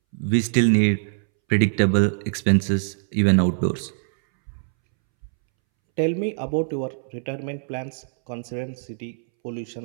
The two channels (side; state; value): left; silent; 63 dB below the other